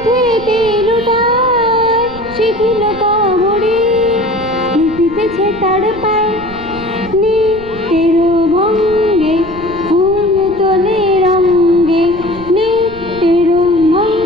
লুটায় সেগুলো কবরি লুটিতেছে তার পায় নিত্যের ভঙ্গে ফুল তোলে রঙ্গে নিত্যের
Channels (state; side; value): noise; right; rumble, 16 dB below the sound